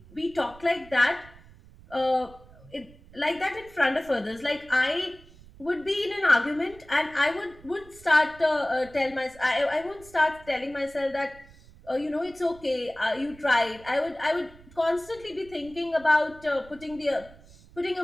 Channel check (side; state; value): right; noise; rumble, 22 dB below the sound